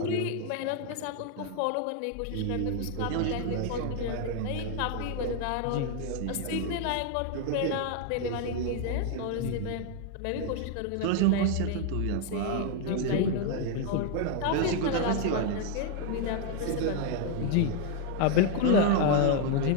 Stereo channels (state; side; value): different; both; correlation 0.00